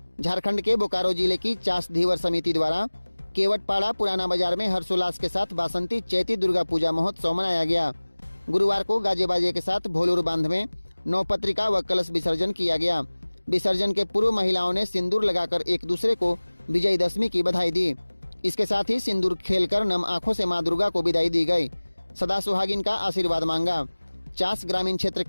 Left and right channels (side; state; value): both; inverted; correlation -1.00